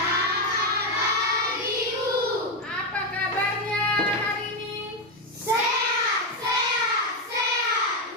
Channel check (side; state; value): both; normal; correlation 0.08